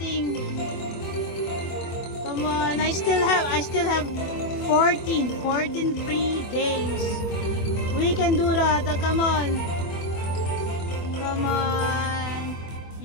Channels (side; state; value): right; late; 24 ms